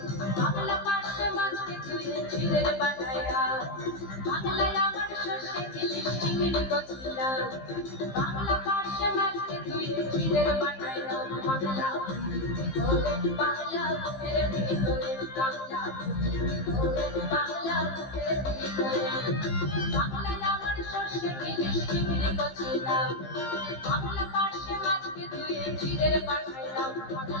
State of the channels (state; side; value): late; right; 15 ms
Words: বাংলা পার্শে মাছকে ধুয়ে জিরের বাটায় দাও। বাংলায় আমার সর্ষে ইলিশ চিংড়ি কচিলাম বাংলা পার্শে মাছকে ধুয়ে জিরের বাটায় দাও। বাংলা বাংলা বুকের ভিতরে বাংলা বাংলা বুকের ভিতরে বাংলায় আমার সর্ষে ইলিশ চিংড়ি কচিলাম বাংলা পার্শে মাছকে ধুয়ে জিরের বাটায় দাও।